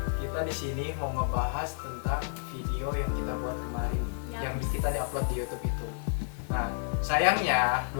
kita di sini mau ngebahas tentang video yang kita buat kemarin nih, yang kita diupload di YouTube itu. Nah, sayangnya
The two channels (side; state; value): right; silent; 57 dB below the other